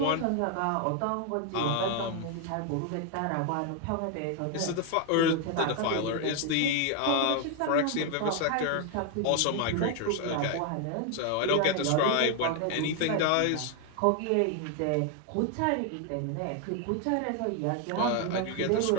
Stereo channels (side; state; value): both; different; correlation 0.00